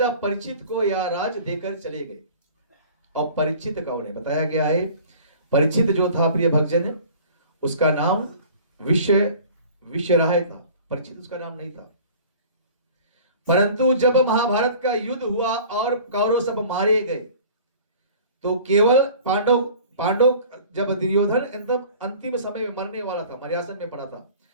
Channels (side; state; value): both; inverted; correlation -0.45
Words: परीक्षित को यह राज देकर चले गए। और परीक्षित का उन्हें बताया गया है, परीक्षित जो था प्रिय भक्तजन, उसका नाम विश्वराय था, परीक्षित उसका नाम नहीं था। परंतु जब महाभारत का युद्ध हुआ और कौरव सब मारे गए तो केवल पांडव जब दुर्योधन एकदम अंतिम समय में मरने वाला था, मर्यासन में पड़ा था,